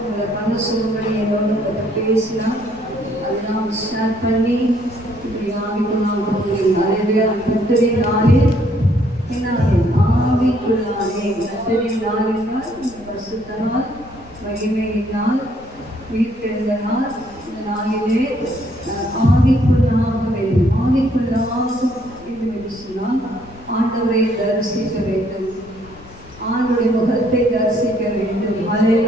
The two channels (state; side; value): noise; left; rumble, 21 dB below the sound